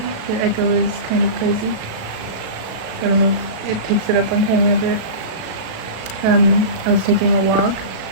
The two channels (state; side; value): late; left; 37 ms